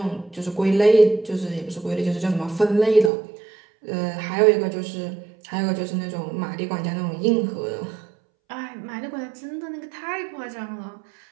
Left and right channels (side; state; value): left; drops out; at 3.1 s